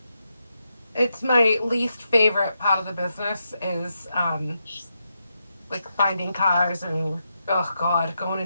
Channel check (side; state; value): both; inverted; correlation -0.85